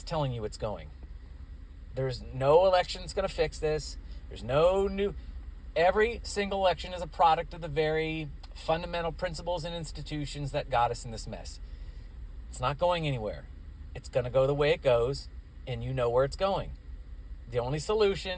telling you it's going. There's no election that's going to fix this. There's no new... Every single election is a product of the very fundamental principles and institutions that got us in this mess. It's not going anywhere. It's going to go the way it goes, and you know where it's going. The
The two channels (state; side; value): identical; both; correlation 1.00